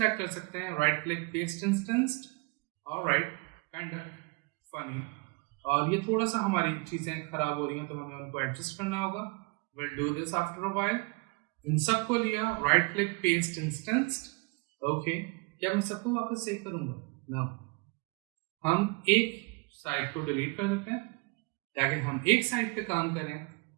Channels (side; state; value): left; quieter; 29.4 dB